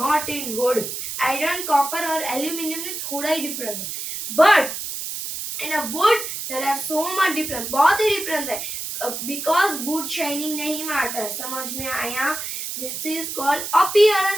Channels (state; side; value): noise; right; hiss, 6 dB below the sound